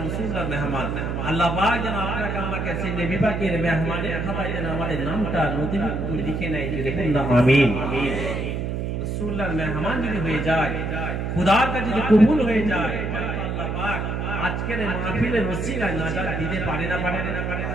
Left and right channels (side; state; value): right; noise; hum, 2 dB below the sound